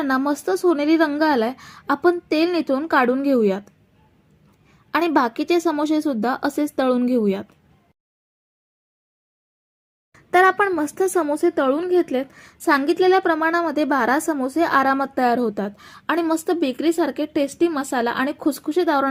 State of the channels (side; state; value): both; identical; correlation 1.00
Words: मस्त सोनेरी रंग आलाय. आपण तेल निथळून काढून घेऊयात आणि बाकीचे समोसे सुद्धा असेच तळून घेऊयात. तर आपण मस्त समोसे तळून घेतलेत. सांगितलेल्या प्रमाणामध्ये 12 समोसे आरामात तयार होतात आणि मस्त बेकरीसारखे टेस्टी मसाला आणि खुसखुशीत